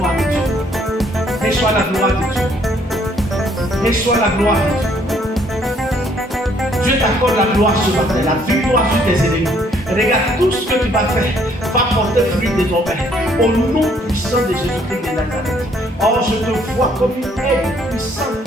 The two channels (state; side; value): normal; both; correlation 0.65